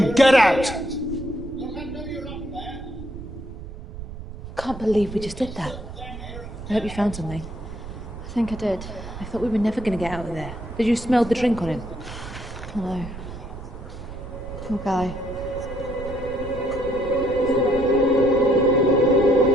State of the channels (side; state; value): right; noise; rumble, 11 dB below the sound